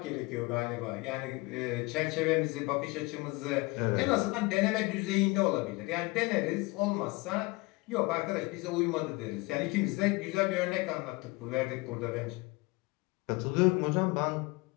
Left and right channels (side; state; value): right; quieter; 24.5 dB